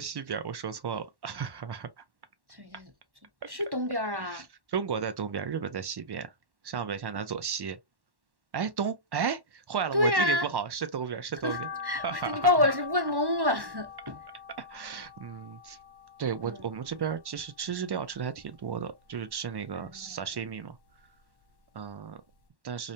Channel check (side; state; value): left; late; 1.1 ms